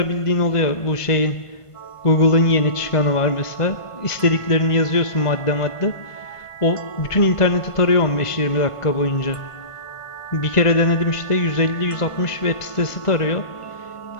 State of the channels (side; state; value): right; late; 1.5 ms